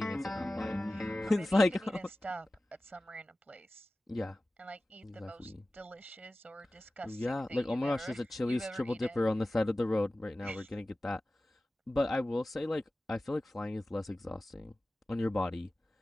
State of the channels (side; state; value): both; normal; correlation 0.96